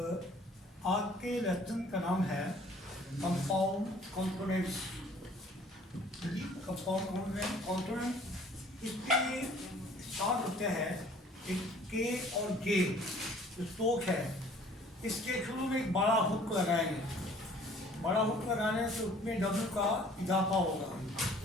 के लेसन का नाम है कंपाउंड कॉम्पोनेंट्स। कंपाउंड कॉम्पोनेंट इसके साथ होते हैं एक के और जे जो स्ट्रोक है, इसके शुरू में एक बड़ा हुक लगाएंगे। बड़ा हुक लगाने से उसमें डब्ल्यू का इजाफा होगा।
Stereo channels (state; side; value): normal; both; correlation 0.54